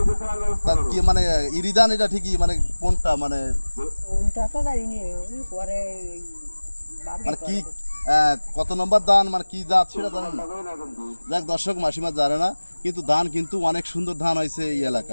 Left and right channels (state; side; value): inverted; both; correlation -1.00